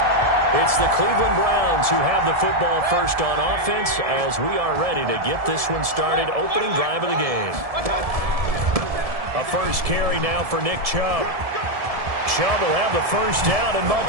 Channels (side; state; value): left; late; 1.7 ms